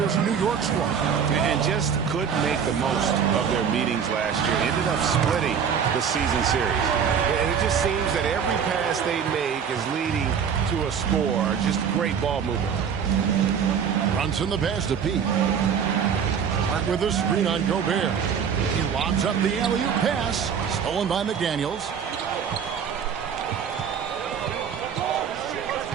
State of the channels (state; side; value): quieter; left; 7.3 dB